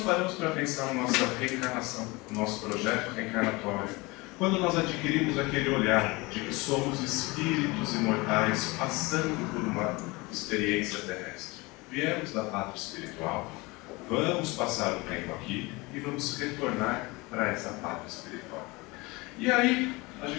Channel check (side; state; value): right; quieter; 24.1 dB